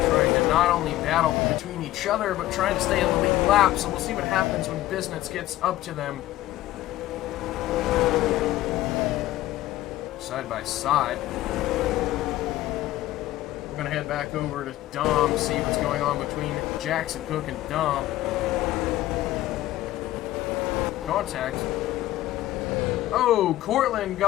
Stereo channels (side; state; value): right; quieter; 15.3 dB